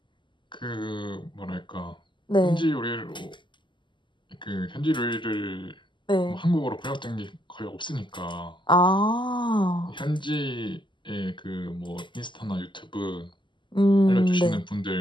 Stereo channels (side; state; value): right; late; 0.23 ms